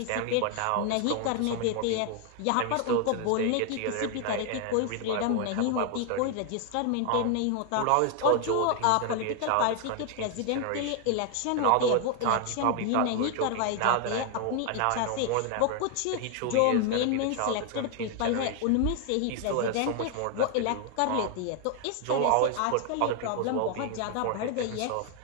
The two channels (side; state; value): both; different; correlation 0.00